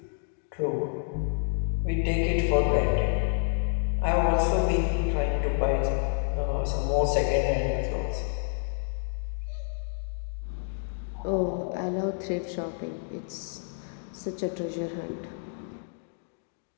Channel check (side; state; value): right; silent; digital silence